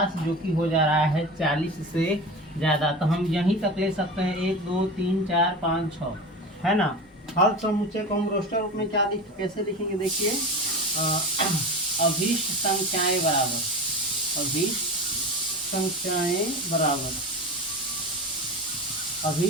जो कि हो जा रहा है 40 से ज़्यादा। तो हम यहीं तक ले सकते हैं 1 2 3 4 5 6, है ना। हल समुच्चय को हम रोस्टर रूप में कैसे लिखेंगे, देखिए अभीष्ट संख्याएं बराबर, अभीष्ट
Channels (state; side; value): normal; both; correlation 0.29